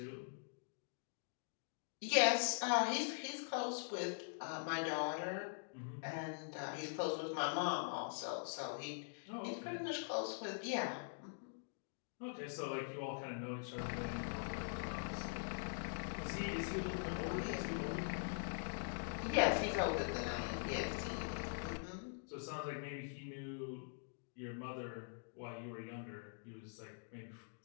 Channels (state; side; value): silent; right; digital silence